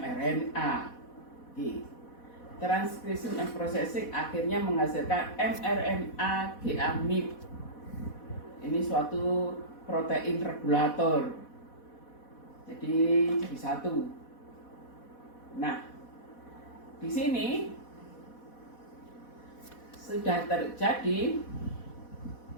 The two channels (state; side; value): late; right; 4.1 ms